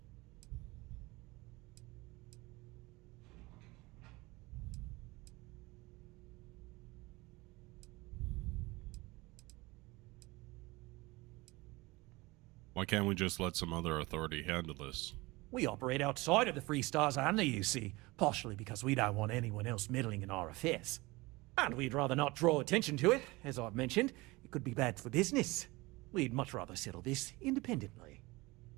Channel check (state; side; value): quieter; left; 22.4 dB